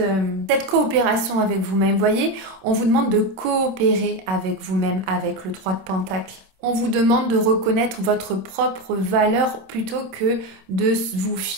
coopération avec vous-même. Vous voyez, on vous demande de coopérer avec vous-même, avec le 3 de Pentacle. On vous demande de reconnaître votre propre valeur plutôt que de vous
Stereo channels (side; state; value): left; late; 27 ms